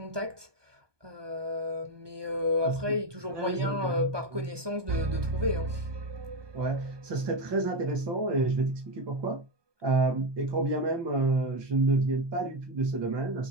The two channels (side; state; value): left; late; 1.2 ms